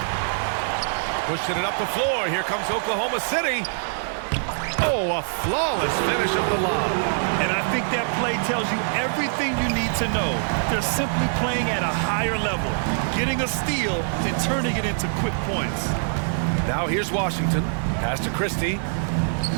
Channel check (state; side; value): silent; left; digital silence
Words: Pushing it up the floor. Here comes Oklahoma City. Oh, a flawless finish of the lob. And I think that play tells you everything you need to know. They're simply playing at a higher level, getting a steal and turning it into quick points. Now here's Washington. Pass to Christie.